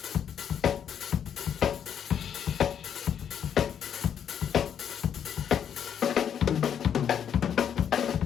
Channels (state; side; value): quieter; right; 8.6 dB